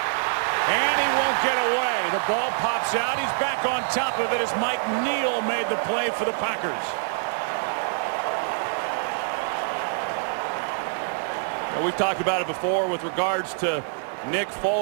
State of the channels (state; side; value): silent; left; digital silence